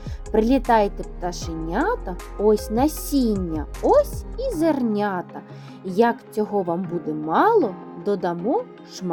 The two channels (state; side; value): identical; both; correlation 1.00